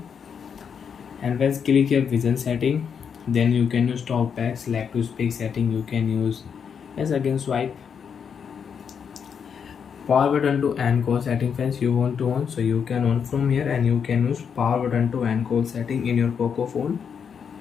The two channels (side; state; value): right; quieter; 7.0 dB